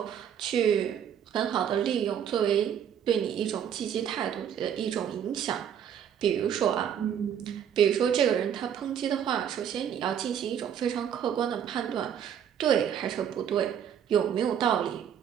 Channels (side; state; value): left; quieter; 9.0 dB